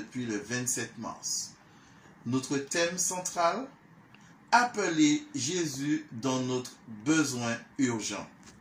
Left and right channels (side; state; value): both; identical; correlation 1.00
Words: le 27 mars. Notre thème central, appeler Jésus dans notre besoin urgent.